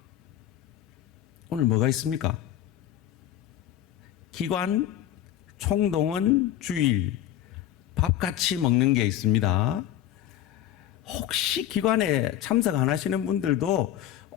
오늘 뭐가 있습니까? 기관, 총동원, 주일, 밥 같이 먹는 게 있습니다. 혹시 기관에 참석 안 하시는 분들도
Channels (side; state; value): right; quieter; 11.7 dB